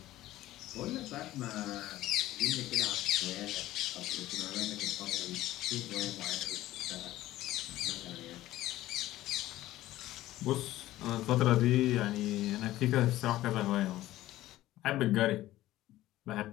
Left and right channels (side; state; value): right; quieter; 15.4 dB